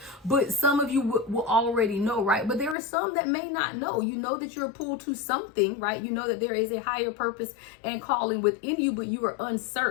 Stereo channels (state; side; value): drops out; right; at 2.8 s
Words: but some of you will already know, right? But there are some that may not know. You know that you're pulled to something, right? You know that there is a higher purpose and calling within you, but you are